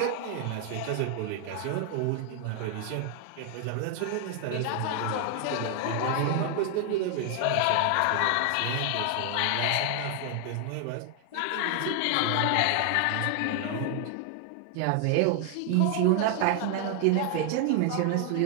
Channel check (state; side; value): different; both; correlation 0.00